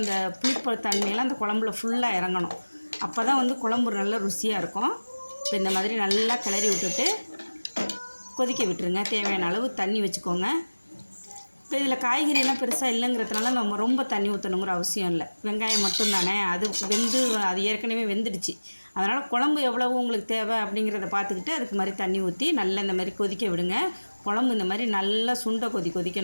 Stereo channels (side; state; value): both; inverted; correlation -1.00